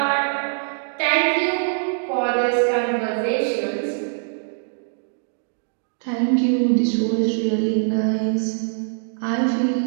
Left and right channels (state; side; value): silent; left; digital silence